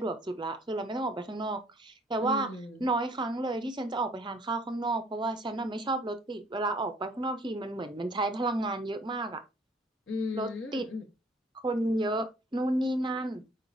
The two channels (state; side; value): normal; both; correlation 0.58